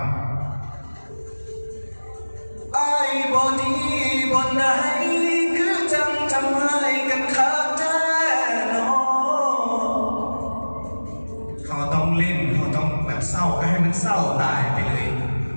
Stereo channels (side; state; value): both; inverted; correlation -1.00